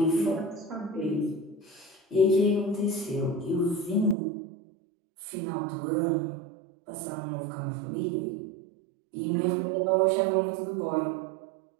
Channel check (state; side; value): drops out; left; at 4.2 s